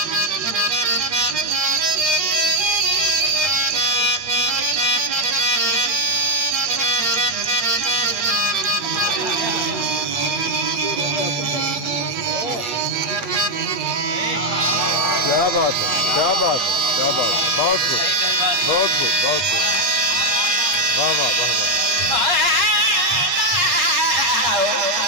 क्या बात है, क्या बात है, क्या बात है। बहुत खूब, बहुत खूब, बहुत खूब। वाह वाह वाह वाह।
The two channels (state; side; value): late; left; 7.9 ms